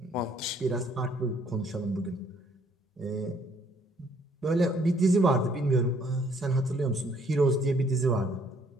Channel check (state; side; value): normal; both; correlation 0.64